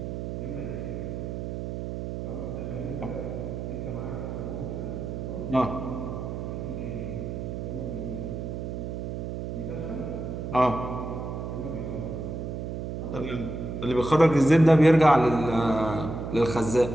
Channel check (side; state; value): right; noise; hum, 5 dB below the sound